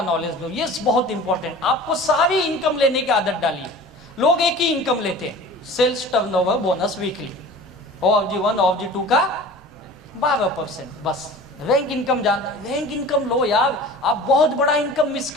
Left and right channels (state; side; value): normal; both; correlation 0.40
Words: नॉलेज लो, ये बहुत इंपॉर्टेंट। आपको सारी इनकम लेने की आदत डालिए। लोग एक ही इनकम लेते हैं, sales turnover bonus weekly, OFG1 OFG2 का 12%, बस। रैंक इनकम जानते, रैंक इनकम लो यार, आप बहुत बड़ा इनकम मिस